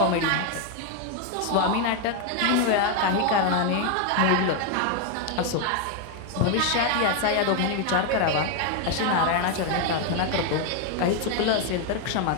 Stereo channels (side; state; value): both; different; correlation 0.01